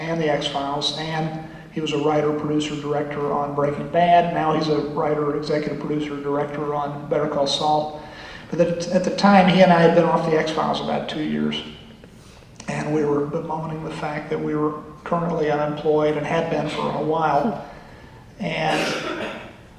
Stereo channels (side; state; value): both; identical; correlation 1.00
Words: he was a writer, producer, director on Breaking Bad. Now he's a writer, executive producer, director on Better Call Saul. But at the time, he and I had been off the X-Files about 2 years, and we were bemoaning the fact that we were currently unemployed and had been for a while. And